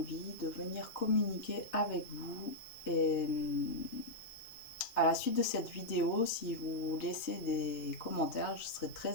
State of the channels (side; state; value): right; late; 2.6 ms